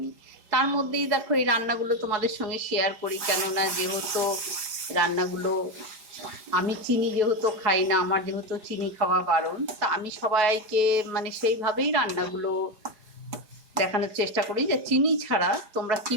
তার মধ্যেই দেখো এই রান্নাগুলো তোমাদের সঙ্গে শেয়ার করি, কেননা যেহেতু রান্নাগুলো আমি চিনি যেহেতু খাই না, আমার যেহেতু চিনি খাওয়া বারণ, তা আমি সবাইকে মানে সেইভাবেই রান্নাগুলো দেখানোর চেষ্টা করি যে চিনি ছাড়া তোমরা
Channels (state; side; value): late; left; 4.7 ms